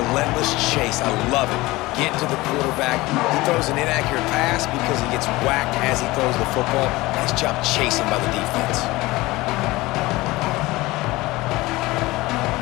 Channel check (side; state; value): right; quieter; 20.2 dB